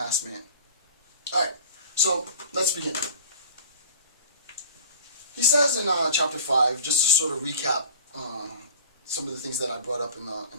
man? All right, so let's begin. He says in chapter 5, just to sort of recap some of the things that I brought up in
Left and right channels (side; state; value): both; inverted; correlation -0.42